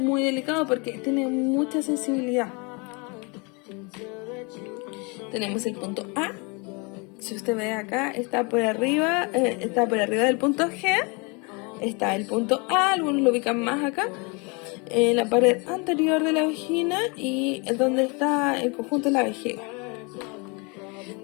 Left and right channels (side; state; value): right; quieter; 30.7 dB